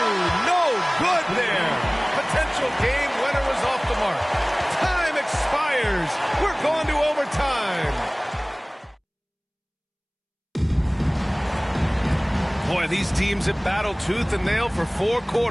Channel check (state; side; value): identical; both; correlation 1.00